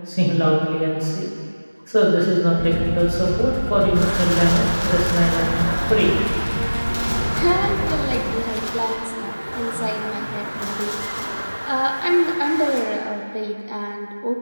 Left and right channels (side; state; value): both; inverted; correlation -1.00